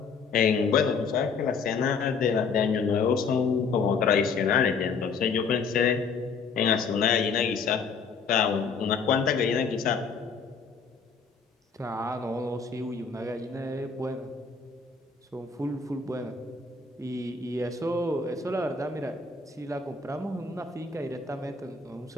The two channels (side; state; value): right; quieter; 5.2 dB